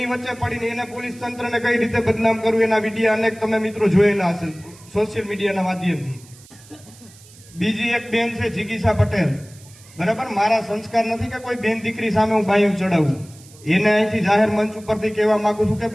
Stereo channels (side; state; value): right; noise; hiss, 23 dB below the sound